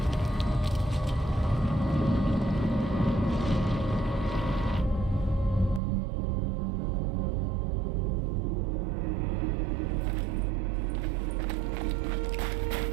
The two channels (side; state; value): left; drops out; at 5.8 s